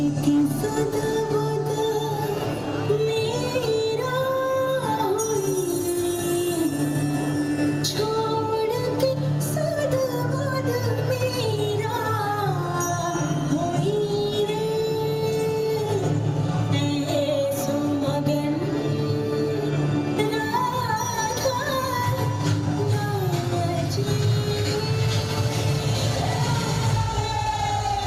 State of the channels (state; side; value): identical; both; correlation 1.00